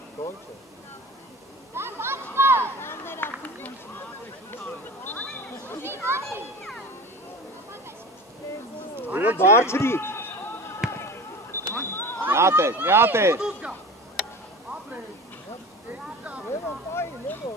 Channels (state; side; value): normal; both; correlation 0.34